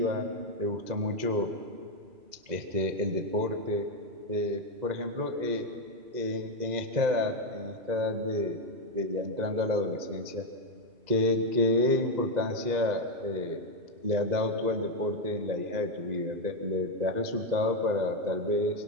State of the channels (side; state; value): left; late; 2.0 ms